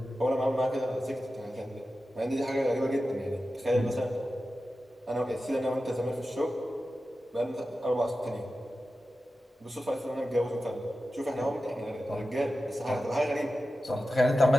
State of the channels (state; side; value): normal; both; correlation 0.93